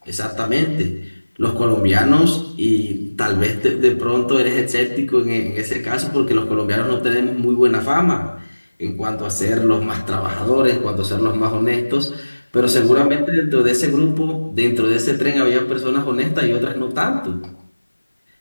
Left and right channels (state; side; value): inverted; both; correlation -1.00